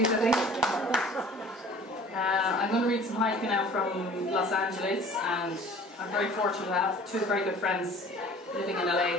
I think. I'm going to read some haiku now from Los Angeles, and I'm very fortunate to have two very good friends living in LA,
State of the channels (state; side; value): normal; both; correlation 0.47